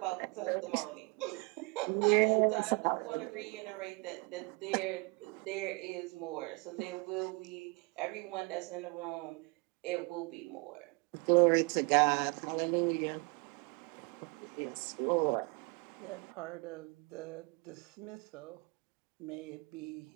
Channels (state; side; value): quieter; left; 28.3 dB